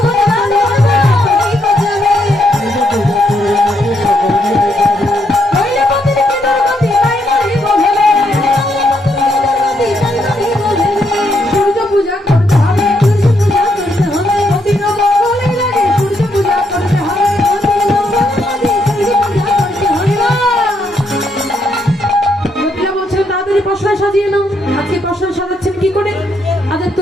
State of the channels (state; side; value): normal; both; correlation 0.76